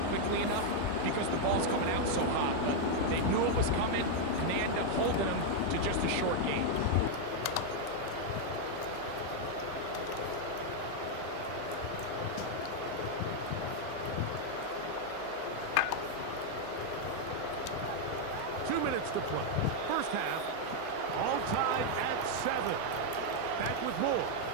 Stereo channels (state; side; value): different; both; correlation 0.00